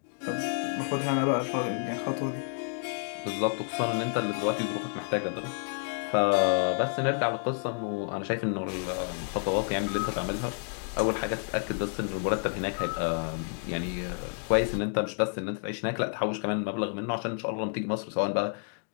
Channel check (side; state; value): right; silent; 58 dB below the other